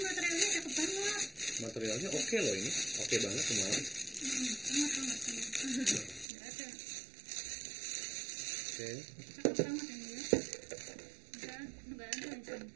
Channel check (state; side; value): drops out; left; at 6.2 s